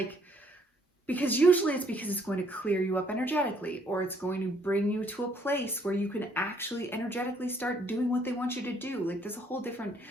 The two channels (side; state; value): both; normal; correlation 0.66